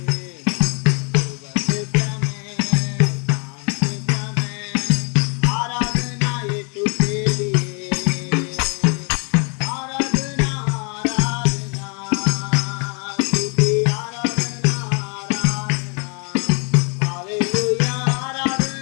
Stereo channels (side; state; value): right; quieter; 36.0 dB